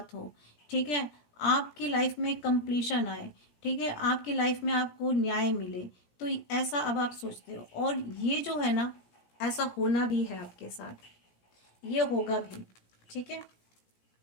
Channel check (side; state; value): right; late; 17 ms